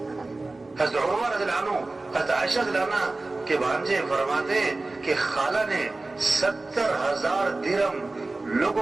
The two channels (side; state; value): left; quieter; 3.2 dB